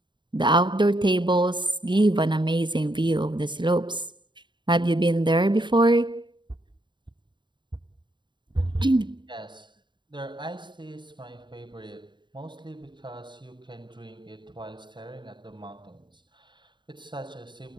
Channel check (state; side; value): late; left; 0.22 ms